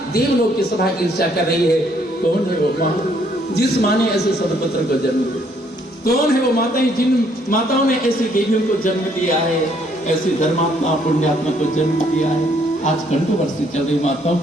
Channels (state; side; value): normal; both; correlation 0.67